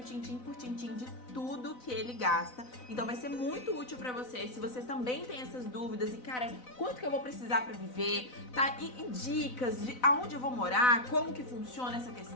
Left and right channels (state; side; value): late; right; 4.0 ms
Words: tintim por tintim, de tudo que ele gasta. Então vai ser muito útil pra você, se você também tem essas dúvidas e, cara, quanto que eu vou precisar pra viver, tá? E dicas de aonde eu vou morar, como que funciona essa